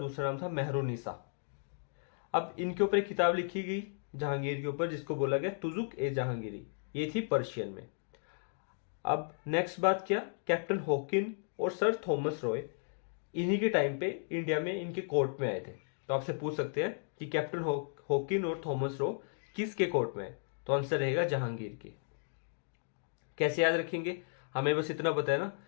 नाम था मेहरुनिसा। अब इनके ऊपर एक किताब लिखी गई जहांगीर के ऊपर, जिसको बोला गया तुजुक ए जहांगीरी। ये थी पर्शियन में। अब नेक्स्ट बात क्या, कैप्टन हॉकिन और सर थॉमस रॉय इन्हीं के टाइम पे इंडिया में इनके कोर्ट में आए थे। तो आपसे पूछ सकते हैं कि कैप्टन हॉकिन और थॉमस रॉय किसके कोर्ट में है, तो आंसर रहेगा जहांगीर के। कैसे याद रखेंगे? हमें बस इतना पता है ना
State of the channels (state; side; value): silent; right; digital silence